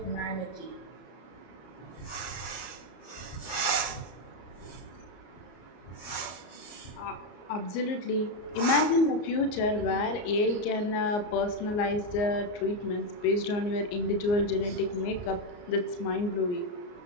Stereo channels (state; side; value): late; right; 34 ms